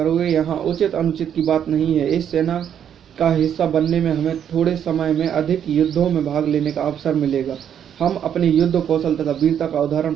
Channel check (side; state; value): left; quieter; 9.0 dB